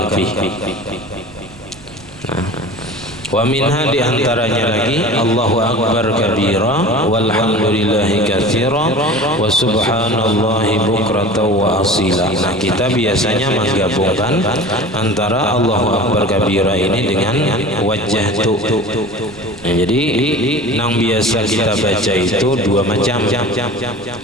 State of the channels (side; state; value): right; noise; rumble, 23 dB below the sound